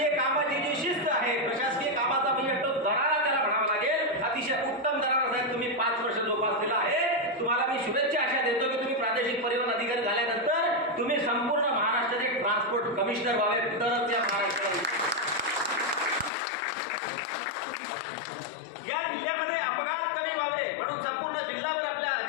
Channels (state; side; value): drops out; right; at 16.3 s